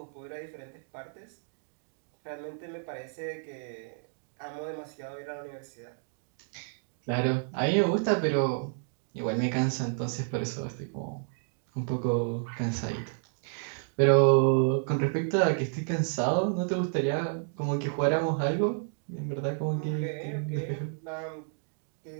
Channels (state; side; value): silent; left; digital silence